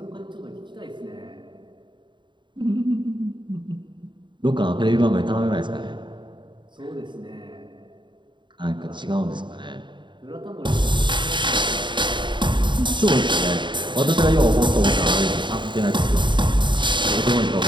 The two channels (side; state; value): left; late; 0.23 ms